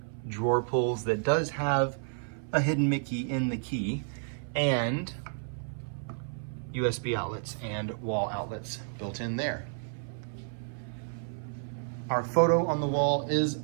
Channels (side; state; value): left; silent; 57 dB below the other